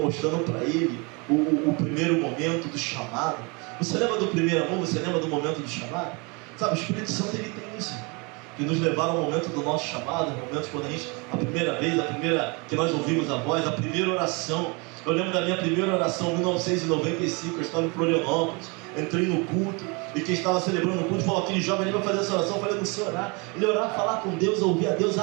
para ele o primeiro momento do chamado. Você lembra do primeiro amor? Você lembra do momento do chamado? Sabe, o Espírito Santo ele tem isso, que nos levaram ao momento do nosso chamado, momentos quando a primeira vez, que nós ouvimos a voz, a primeira oração. Eu lembro da minha primeira oração em 1995, eu estava em Florianópolis, entrei no culto, e quem estava celebrando o culto falou, aquele jovem ali vai fazer essa oração. Eu falei, não sei orar. Ele orar, falar com Deus, ouvir a Deus,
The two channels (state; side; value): quieter; left; 29.8 dB